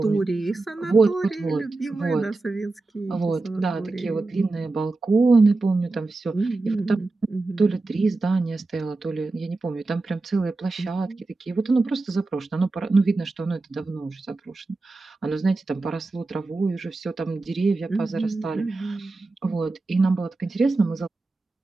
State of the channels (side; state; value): left; quieter; 3.3 dB